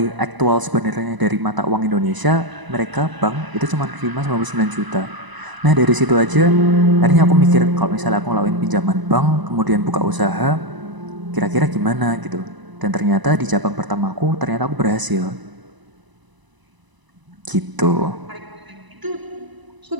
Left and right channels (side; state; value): left; late; 1.0 ms